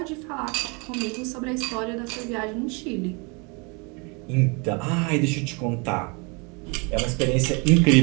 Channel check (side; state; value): left; quieter; 31.3 dB